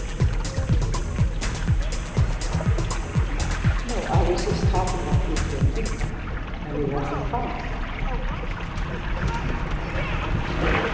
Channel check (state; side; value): identical; both; correlation 1.00